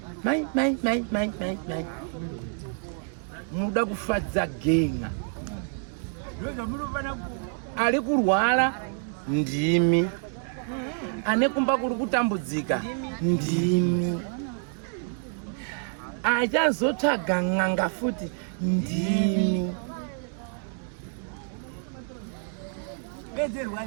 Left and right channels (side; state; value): left; silent; 59 dB below the other